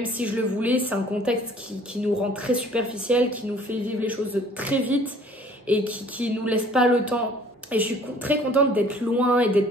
si je le voulais, c'est un contexte qui nous rend très superficiel, qui nous fait vivre les choses très vite et qui nous laisse pas le temps. Et je suis très contente d'être loin et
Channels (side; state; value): both; normal; correlation 0.54